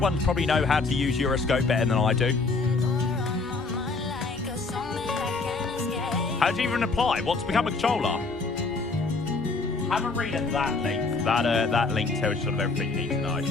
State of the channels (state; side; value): quieter; right; 3.8 dB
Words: probably know how to use Euroscope better than I do. How do you even apply? What to become a controller? Have a read at that link. That link tells you sort of everything you need to know.